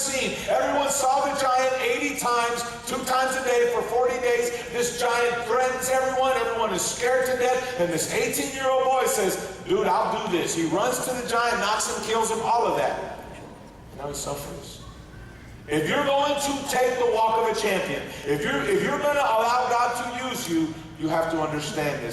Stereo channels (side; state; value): both; identical; correlation 1.00